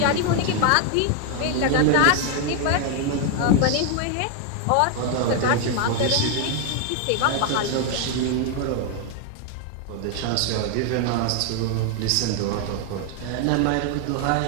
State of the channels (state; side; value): different; both; correlation 0.01